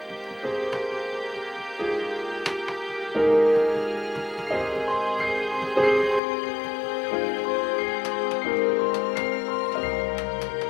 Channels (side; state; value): right; drops out; at 6.2 s